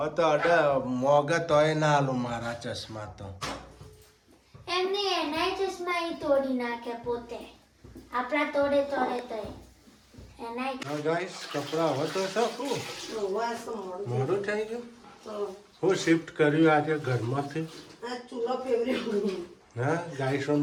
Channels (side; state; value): both; identical; correlation 1.00